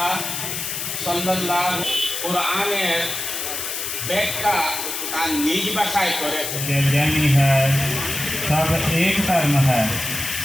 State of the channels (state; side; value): noise; left; hiss, 4 dB below the sound